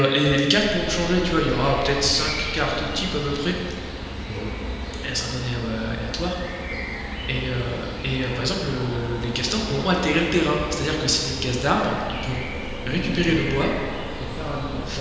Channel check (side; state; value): both; identical; correlation 1.00